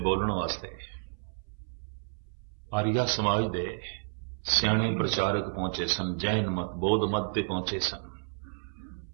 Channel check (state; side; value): silent; left; 57 dB below the other